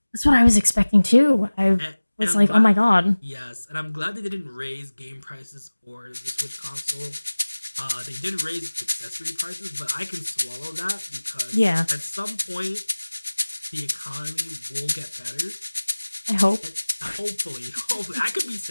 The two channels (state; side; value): inverted; both; correlation -1.00